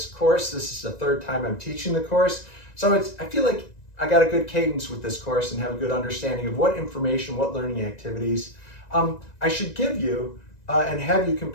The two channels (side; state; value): right; late; 1.9 ms